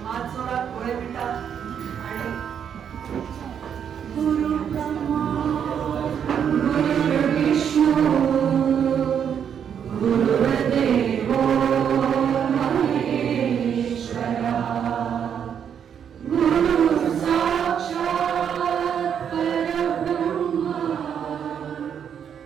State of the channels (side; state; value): left; quieter; 8.2 dB